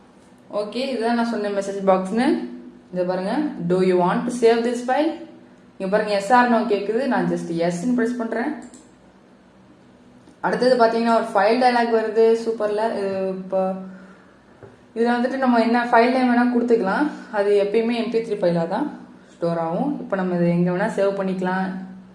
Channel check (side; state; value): both; identical; correlation 1.00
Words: ஓகே, இதுதான் நான் சொன்ன மெசேஜ் பாக்ஸ்னு. இதை பாருங்க, do you want to save this file? இங்கே பாருங்க, எஸ் ஆர் நோ கேட்குது. நான் ஜஸ்ட் எஸ்ன்னு ப்ரெஸ் பண்ணுறேன். அடுத்தது பார்த்தீங்கன்னா ஒரு ஃபைல் டயலாக் வருது. சூப்பரில். இப்போ இதில் வந்துட்டு நம்ம என்ன ஃபைல் நேம் வேணால் கொடுத்துக்கலாம். அது எப்பயுமே MP3 ஃபைலாக தான் ஸ்டோர் ஆகும். இப்போ நம்ம இதை எங்கே வேணால் சேவ் பண்ணிக்கலாம்.